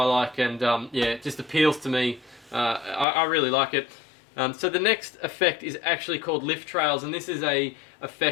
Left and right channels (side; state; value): right; drops out; at 3.1 s